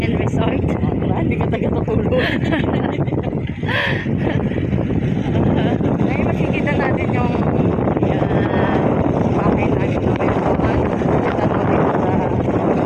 and Resort. Hindi ka taga-tutulog. Ngayon makikita natin yung bahay namin na meron. Kita mo dito sa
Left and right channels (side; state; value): both; identical; correlation 1.00